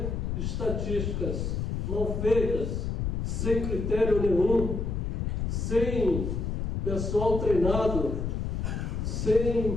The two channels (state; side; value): noise; left; rumble, 1 dB below the sound